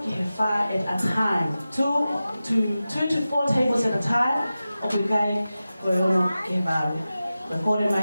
ke fa at a time 2 to 4 tables at a time obligai Koyono ke baru Korea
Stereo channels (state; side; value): inverted; both; correlation -0.94